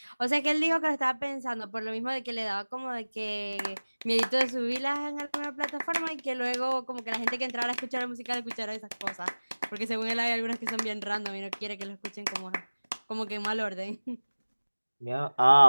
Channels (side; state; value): both; inverted; correlation -1.00